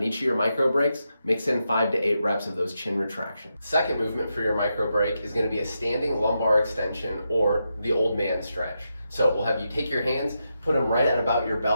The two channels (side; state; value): both; inverted; correlation -0.85